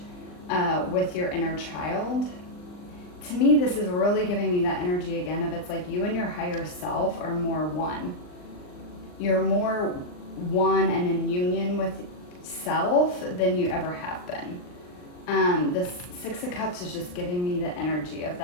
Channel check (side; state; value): right; late; 39 ms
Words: with your inner child. To me, this is really giving me that energy again of it's like you and your higher self are more one. You're more one and in union with self than you ever have been. The Six of Cups is just giving me the energy of